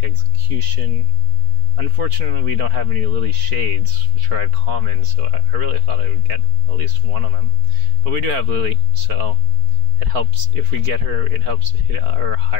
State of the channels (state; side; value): late; left; 4.4 ms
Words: Execution. Unfortunately, we don't have any Lily Shades, which are at common, so I really thought I would get at least one of them. But we do have Lily, so it helps. If we get her, it helps hit our